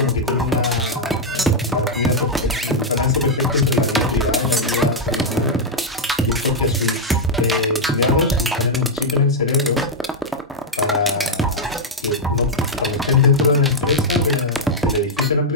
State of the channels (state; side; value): normal; both; correlation -0.02